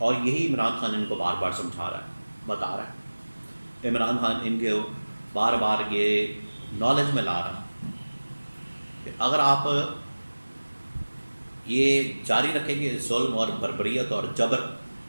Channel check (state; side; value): inverted; both; correlation -1.00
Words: یہی عمران خان ان کو بار بار سمجھا رہا ہے, بتا رہا ہے. عمران خان ان کے بار بار یہ نالج میں لا رہا ہے کہ اگر آپ یہ جاری رکھیں گے ظلم اور بربریت اور جبر